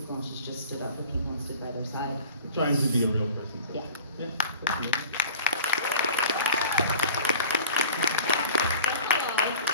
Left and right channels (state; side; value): inverted; both; correlation -0.44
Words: and she's just stood up for people and stood by their side. Trying to be a real person. So. Yeah. Yeah.